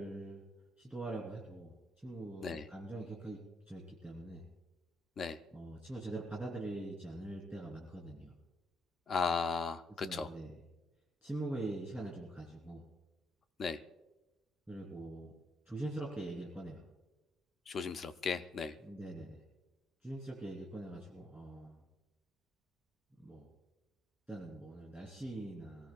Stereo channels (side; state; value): both; normal; correlation 0.75